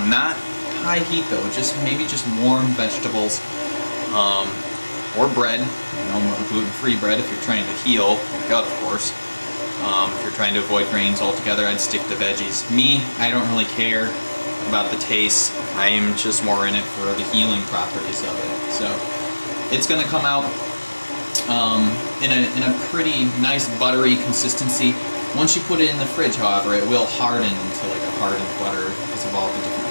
high heat though, maybe just warm vegetables, or bread. You know, gluten-free bread if you're trying to heal your gut, of course. If you're trying to avoid grains altogether, I'd stick to veggies. Me, I don't really care about the taste. I'm just more in it for the healing properties of it. So it's going to come out in a pretty nice buttery consistency. Once you put it in the fridge, however, it will harden into like a hardened butter because of all the different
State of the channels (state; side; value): inverted; both; correlation -1.00